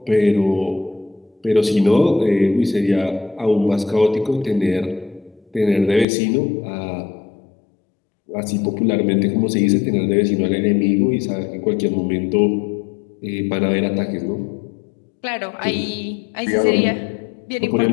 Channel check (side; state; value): right; drops out; at 6.1 s